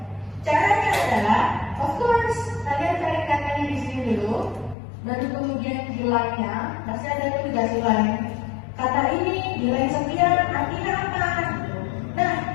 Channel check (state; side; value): drops out; right; at 4.8 s